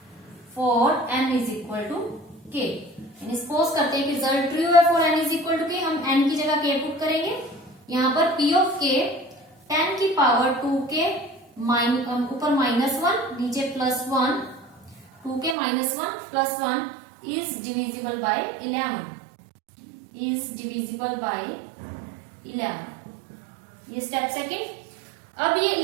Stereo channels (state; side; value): drops out; left; at 15.6 s